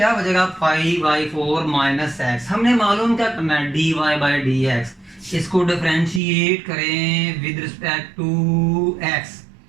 बचेगा पाई बाई 4 माइनस एक्स। हमने मालूम क्या करना है dy बाई डी एक्स, इसको डिफरेंशिएट करें विद रिस्पेक्ट टू x।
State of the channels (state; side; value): drops out; left; at 6.2 s